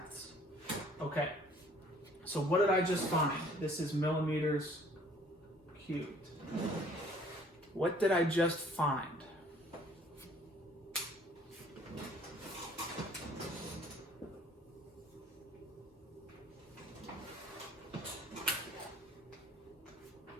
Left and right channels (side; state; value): both; normal; correlation 0.57